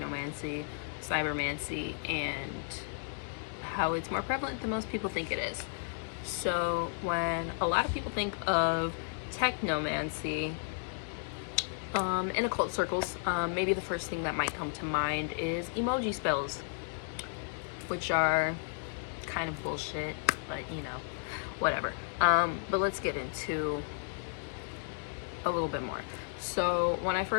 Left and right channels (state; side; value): silent; right; digital silence